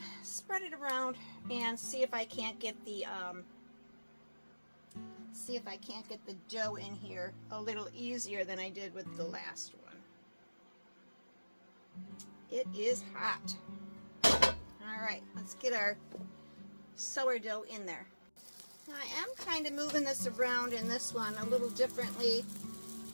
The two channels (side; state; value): both; inverted; correlation -1.00